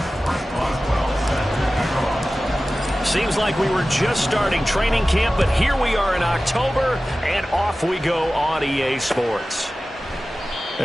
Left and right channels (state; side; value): normal; both; correlation 0.96